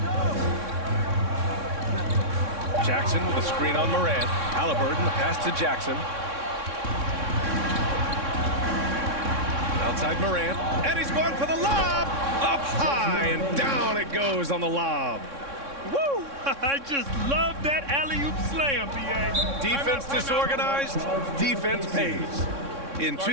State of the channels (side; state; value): left; late; 3.6 ms